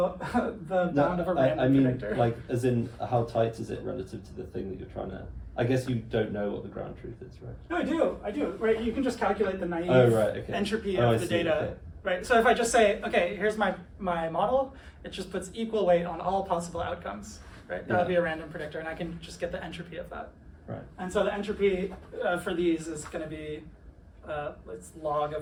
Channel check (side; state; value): both; identical; correlation 1.00